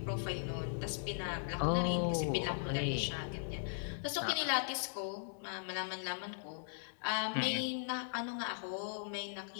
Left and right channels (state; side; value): silent; right; digital silence